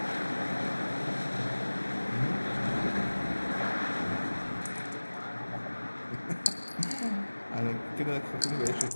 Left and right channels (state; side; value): inverted; both; correlation -1.00